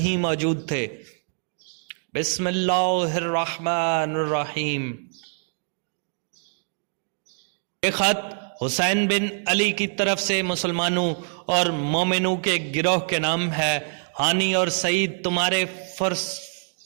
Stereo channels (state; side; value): silent; left; digital silence